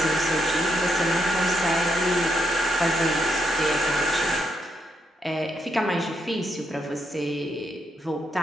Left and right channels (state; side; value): normal; both; correlation 0.78